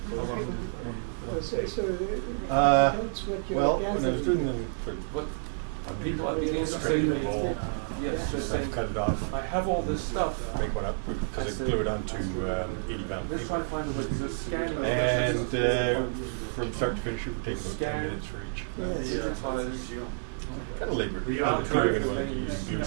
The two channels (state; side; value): silent; left; digital silence